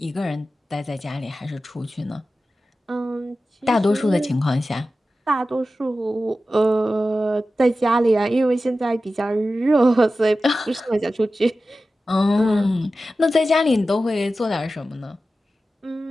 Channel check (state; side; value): normal; both; correlation 0.94